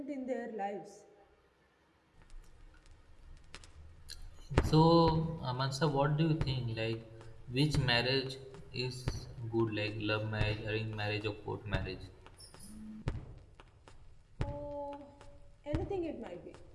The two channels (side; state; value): both; identical; correlation 1.00